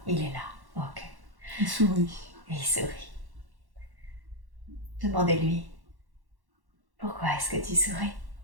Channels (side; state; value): left; late; 1.1 ms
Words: Il est là. Ok. Il sourit. Et il sourit. Demandez-lui, pourquoi est-ce que tu souris?